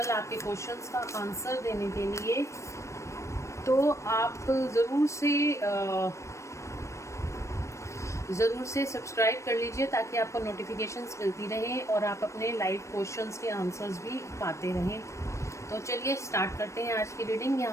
आपके क्वेश्चंस का आंसर देने के लिए, तो आप ज़रूर से सब्सक्राइब कर लीजिए ताकि आपको नोटिफिकेशंस मिलती रहें और आप अपने लाइव क्वेश्चंस के आंसर्स भी पाते रहें। तो चलिए स्टार्ट करते हैं आज की रीडिंग।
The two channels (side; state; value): right; late; 0.14 ms